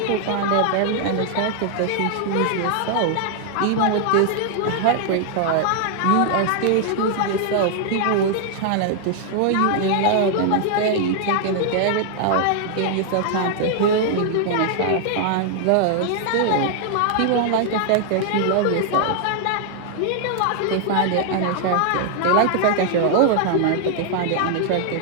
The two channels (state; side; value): different; both; correlation 0.00